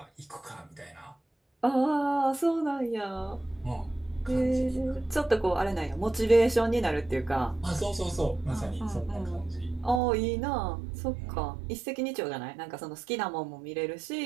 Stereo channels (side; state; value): left; drops out; at 10.0 s